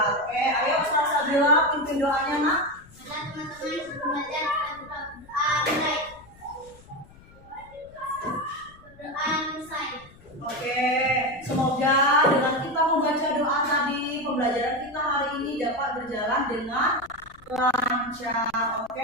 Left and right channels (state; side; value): noise; left; rumble, 24 dB below the sound